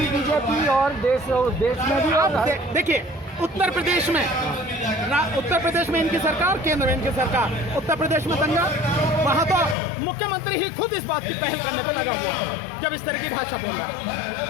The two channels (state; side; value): drops out; right; at 9.8 s